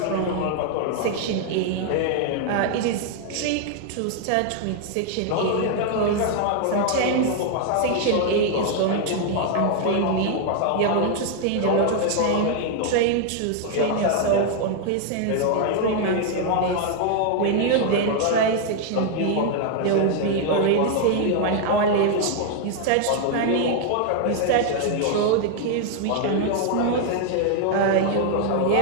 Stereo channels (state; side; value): different; both; correlation 0.00